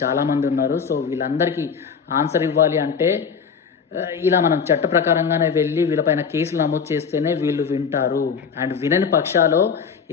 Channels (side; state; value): right; quieter; 6.3 dB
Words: చాలామంది ఉన్నారు. సో వీళ్ళందరికీ ఆన్సర్ ఇవ్వాలి అంటే ఇలా మనం చట్ట ప్రకారంగానే వెళ్ళి వీళ్ళపైన కేసులు నమోదు చేస్తేనే వీళ్ళు వింటారు. అండ్ వినని పక్షాలో